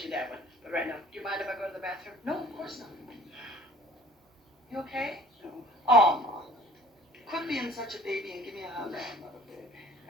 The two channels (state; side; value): normal; both; correlation 0.50